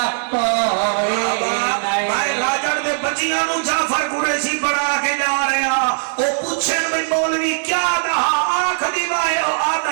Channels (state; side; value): silent; left; digital silence